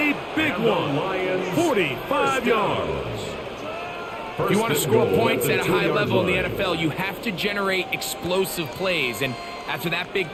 big one. 45 yards. If you want to score points at a high level in the NFL, you have to generate explosive plays. And after that big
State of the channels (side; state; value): both; identical; correlation 1.00